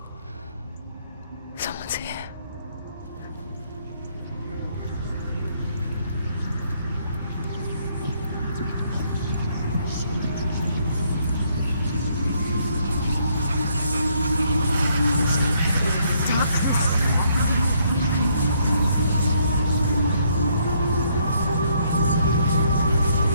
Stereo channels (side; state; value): both; inverted; correlation -0.70